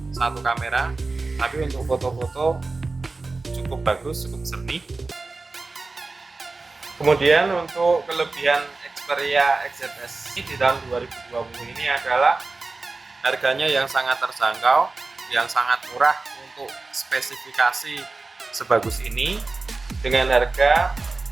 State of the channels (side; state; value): left; quieter; 3.6 dB